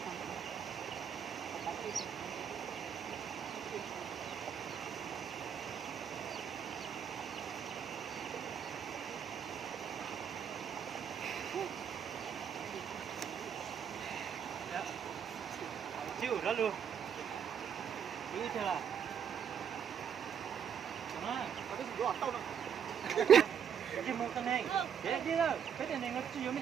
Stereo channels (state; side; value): quieter; left; 8.0 dB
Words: yêu đó luôn yêu chưa là đó có cái gì đó tao nó cái một cái này để đi đâu cái tiền này nó chỉ có mấy